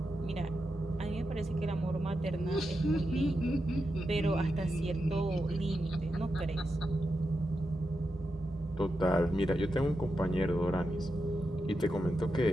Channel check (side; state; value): both; normal; correlation 0.88